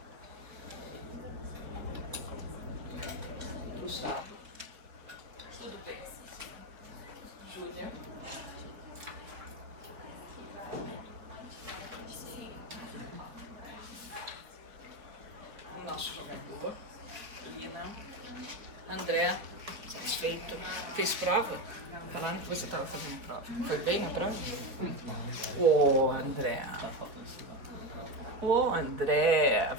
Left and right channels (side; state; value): left; late; 4.1 ms